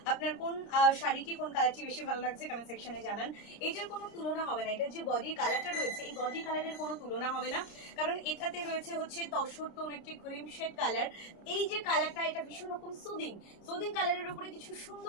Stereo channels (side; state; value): right; late; 30 ms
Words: আপনার কোন শাড়িটি, কোন কালারটি বেশি ভালো লাগছে কমেন্ট সেকশনে জানান। এটার কোনো তুলনা হবে না, এটার যে বডি কালারটা রয়েছে, এই বডি কালারের কোনো তুলনা হবে না, কারণ এটাতে রয়েছে হচ্ছে তসর টোন একটি শেড কালার। এই যে কালারটা, এটা ভীষণ রকম সুদিং কালারের উপরে কিছু